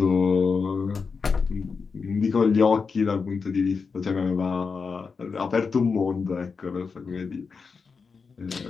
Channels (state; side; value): quieter; right; 5.1 dB